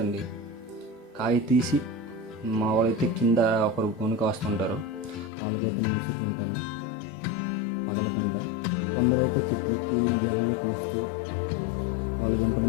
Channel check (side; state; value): right; drops out; at 5.3 s